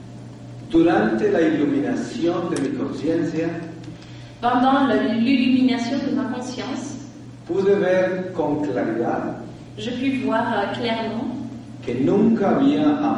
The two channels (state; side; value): identical; both; correlation 1.00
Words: Durante la iluminación de mi conciencia, Pendant l'illumination de ma conscience, pude ver con claridad je pus voir clairement que nunca había